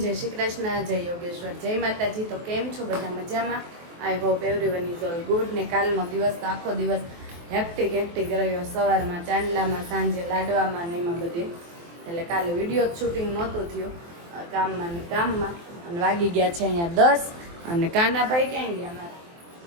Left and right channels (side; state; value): left; late; 23 ms